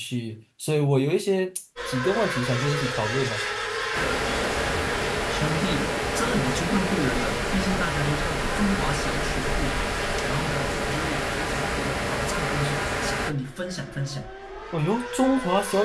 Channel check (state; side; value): identical; both; correlation 1.00